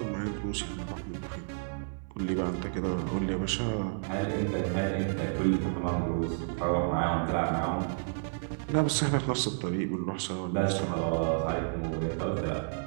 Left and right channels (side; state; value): left; silent; 57 dB below the other